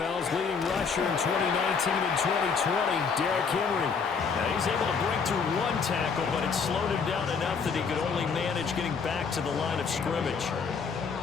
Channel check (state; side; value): quieter; right; 5.6 dB